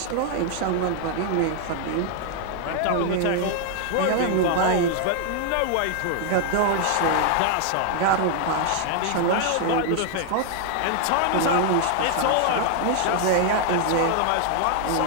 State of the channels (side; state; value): both; different; correlation 0.00